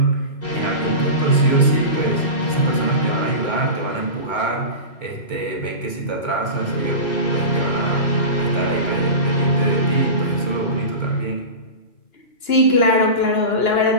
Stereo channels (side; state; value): right; late; 2.2 ms